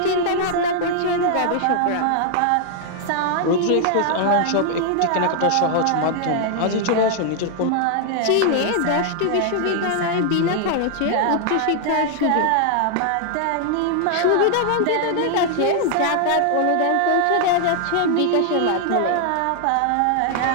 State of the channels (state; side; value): different; both; correlation 0.00